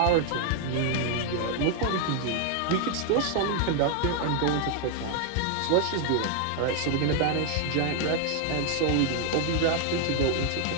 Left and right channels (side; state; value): both; different; correlation 0.00